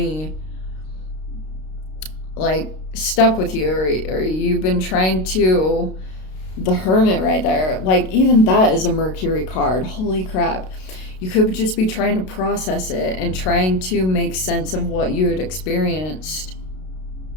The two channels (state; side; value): late; right; 32 ms